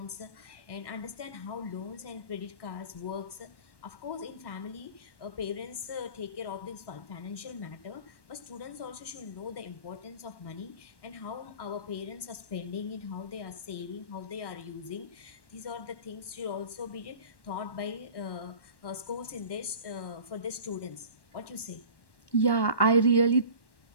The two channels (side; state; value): right; late; 1.1 ms